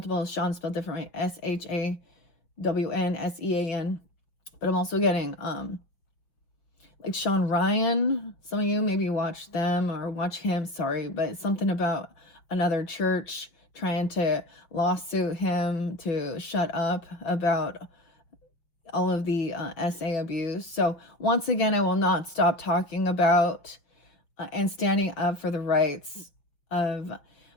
Sean spelled differently. SHAWNSEAN. But I'm also getting like Sean Ryan. Some of you maybe watch them or watch him, sorry, but something about another church trying to lawsuit him to shut up about all of the SA abuse. So once again, I will not stop talking about and standing up for the rights of,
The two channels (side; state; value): right; late; 6.0 ms